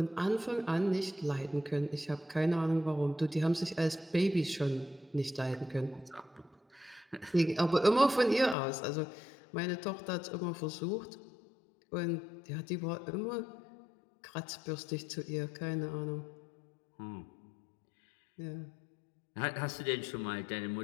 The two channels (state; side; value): drops out; right; at 8.6 s